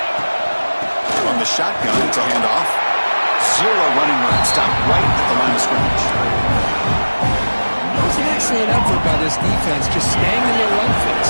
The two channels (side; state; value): both; inverted; correlation -1.00